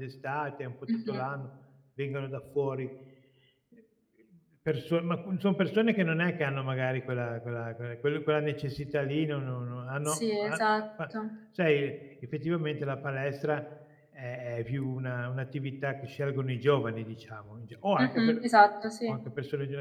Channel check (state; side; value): identical; both; correlation 1.00